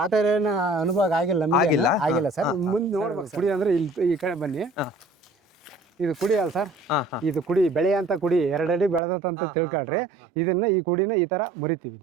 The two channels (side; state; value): left; drops out; at 9.0 s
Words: ಆ ತರ ಏನು ಅನುಭವ ಆಗಿಲ್ಲ ಸರ್. ಮುಂದೆ ನೋಡ್ಬೇಕು. ಕುಡಿ ಅಂದ್ರೆ ಇಲ್ಲಿ ಈ ಕಡೆ ಬನ್ನಿ. ಇದು ಕುಡಿ ಅಲ್ಲ ಸರ್, ಇದು ಕುಡಿ ಬೆಳೆ ಅಂತ ಕುಡಿ 2 ಅಡಿ ಬೆಳೆದಂತ ತಿಳ್ಕೊಳ್ರಿ. ಇದನ್ನ ಈ ಕುಡಿನ ಈ ತರ ಮುರಿತೀವಿ.